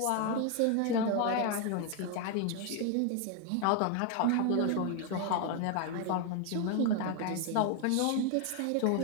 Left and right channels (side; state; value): both; different; correlation 0.01